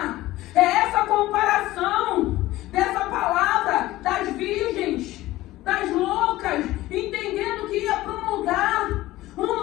é essa comparação dessa palavra das virgens, das loucas, entendendo que ia para um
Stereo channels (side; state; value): right; quieter; 16.9 dB